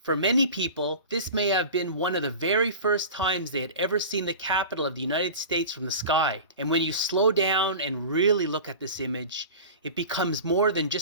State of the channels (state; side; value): inverted; both; correlation -0.34